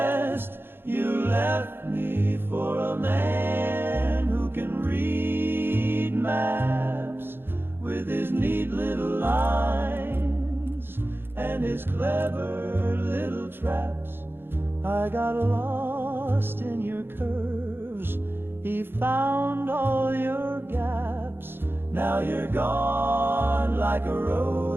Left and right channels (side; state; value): left; late; 0.10 ms